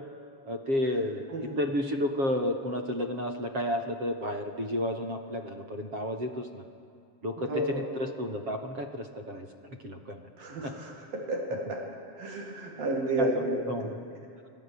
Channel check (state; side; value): late; left; 7.4 ms